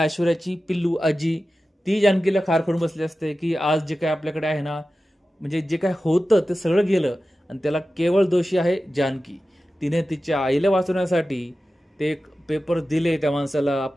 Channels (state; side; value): normal; both; correlation 0.94